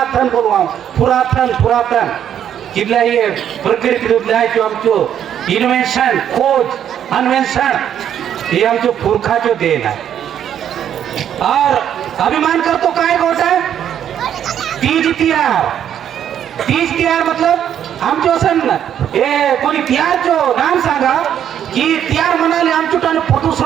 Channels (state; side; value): quieter; left; 9.7 dB